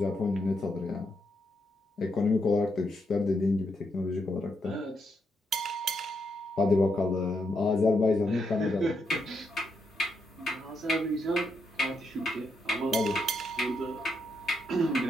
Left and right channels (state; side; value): normal; both; correlation 0.80